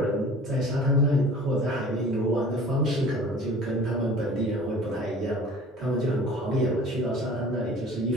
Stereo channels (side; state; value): both; normal; correlation 0.45